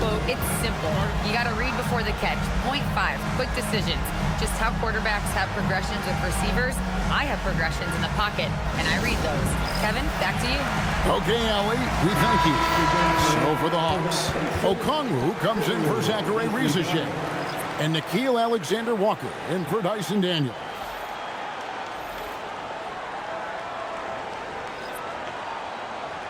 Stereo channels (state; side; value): identical; both; correlation 1.00